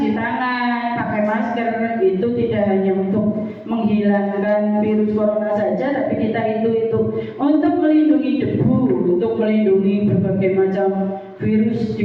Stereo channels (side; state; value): both; identical; correlation 1.00